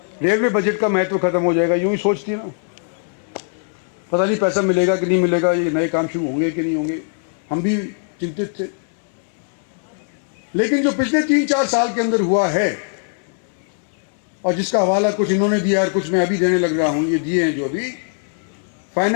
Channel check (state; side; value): silent; right; 62 dB below the other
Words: रेलवे बजट का महत्व खत्म हो जाएगा। यूं ही सोचती ना, पता नहीं पैसा मिलेगा कि नहीं मिलेगा, ये नए काम शुरू होंगे कि नहीं होंगे, हम भी चिंतित थे। लेकिन जो पिछले 3-4 साल के अंदर हुआ है, और जिसका हवाला कुछ इन्होंने दिया और कुछ मैं अभी देने लग रहा हूं, ये दिए हैं जो अभी